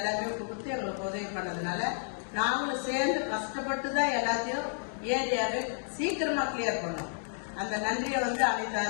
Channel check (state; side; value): silent; right; digital silence